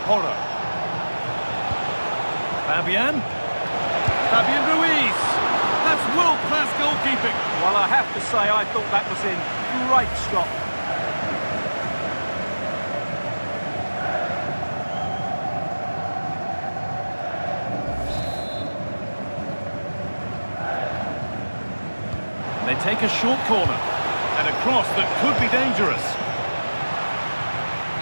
Porro. Fabian. Fabian Ruiz. That's world-class goalkeeping. Well, I have to say, I thought that was in. Great stop. They take a short corner and a cross that could be dangerous.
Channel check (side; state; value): both; inverted; correlation -1.00